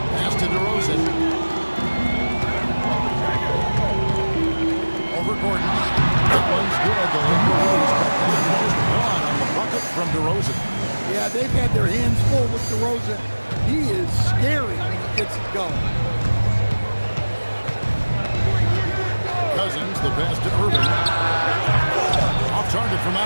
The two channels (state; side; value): inverted; both; correlation -1.00